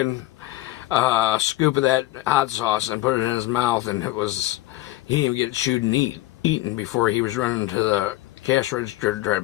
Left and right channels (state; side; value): quieter; right; 17.2 dB